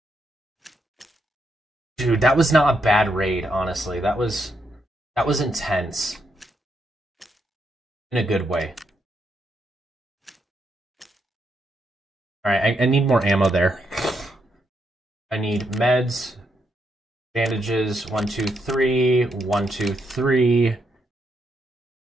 Dude, that was not a bad raid, honestly. That was intense. In a good way. Alright, I need more ammo there. I need meds, bandages, 1, 2, 3, 1, 2, 3.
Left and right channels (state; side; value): normal; both; correlation 0.80